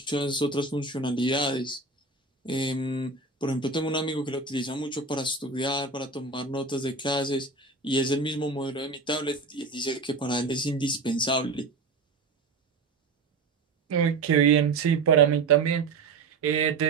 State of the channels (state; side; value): quieter; left; 4.0 dB